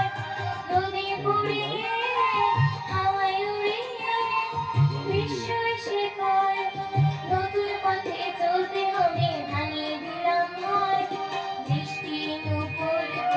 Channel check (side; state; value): both; identical; correlation 1.00